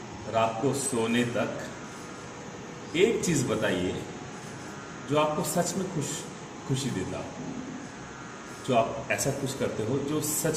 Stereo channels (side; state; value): both; identical; correlation 1.00